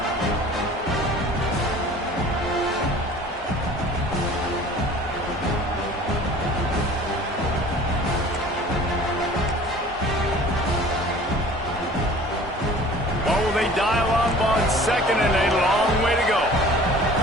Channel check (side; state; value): both; normal; correlation 0.46